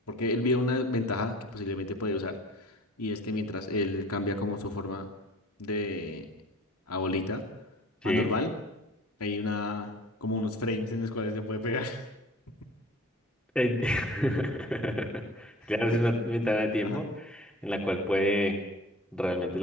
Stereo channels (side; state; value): both; normal; correlation 0.45